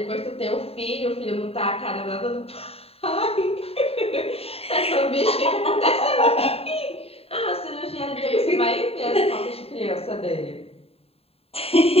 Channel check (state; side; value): late; right; 0.29 ms